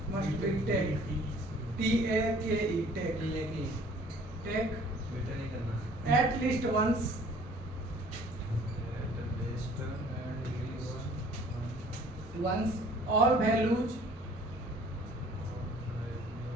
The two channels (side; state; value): both; normal; correlation 0.54